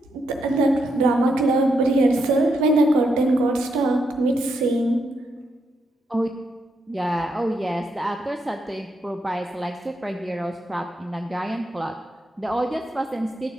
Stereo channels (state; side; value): normal; both; correlation 0.80